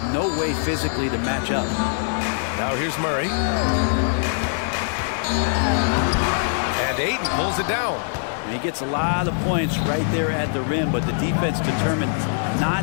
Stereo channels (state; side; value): silent; right; digital silence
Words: no way physically to match up. Now here's Murray. And Ayton pulls it down. And he gets a lot of points right there at the rim, but the defense determined